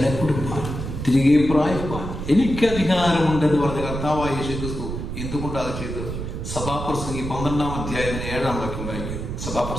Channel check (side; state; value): right; noise; rumble, 6 dB below the sound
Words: കൊടുപ്പാൻ, തിരികെ പ്രായപ്പാൻ എനിക്ക് അധികാരമുണ്ടെന്ന് പറഞ്ഞ കർത്താവായ യേശുക്രിസ്തു എന്തുകൊണ്ടാണ് അത് ചെയ്തത്? സഭാപ്രസംഗി 12-ാം അധ്യായത്തിന്റെ 7-ാം വാക്യം വായിക്കും.